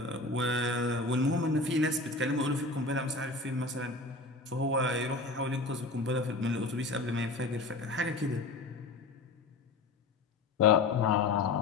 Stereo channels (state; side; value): quieter; right; 3.4 dB